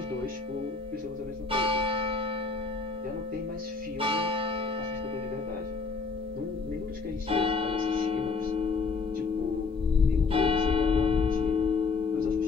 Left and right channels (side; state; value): right; quieter; 4.5 dB